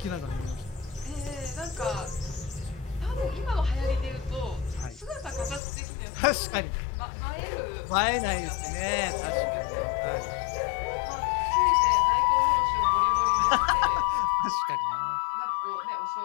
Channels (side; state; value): right; drops out; at 5.6 s